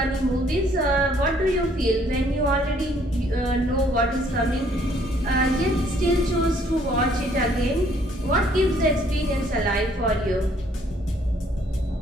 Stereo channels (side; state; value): both; normal; correlation 0.63